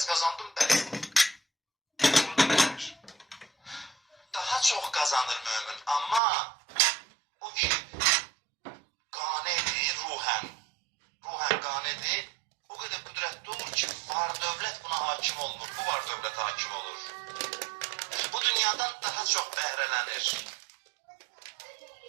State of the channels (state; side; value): drops out; left; at 6.2 s